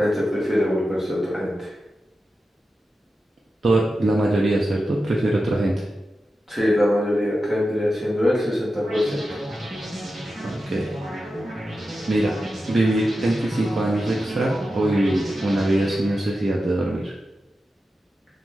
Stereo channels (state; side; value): normal; both; correlation 0.91